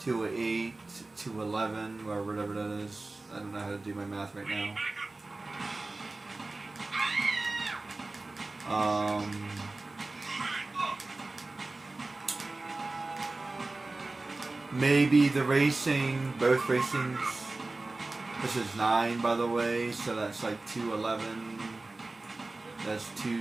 2 of 8, 2 of 11, or whatever that is. I don't know how to do my math right now. Maybe the racing, both racings. This is 9, by the way, so that's like 211. That's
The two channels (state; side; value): quieter; left; 3.2 dB